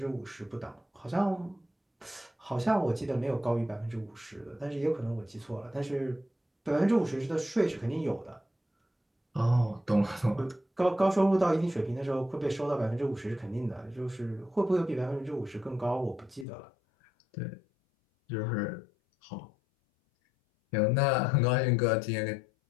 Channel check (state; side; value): drops out; right; at 16.4 s